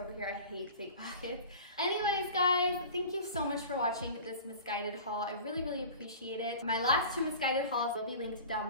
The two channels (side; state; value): both; inverted; correlation -0.39